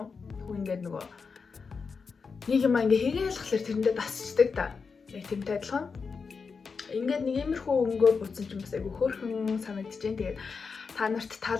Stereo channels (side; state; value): right; quieter; 5.2 dB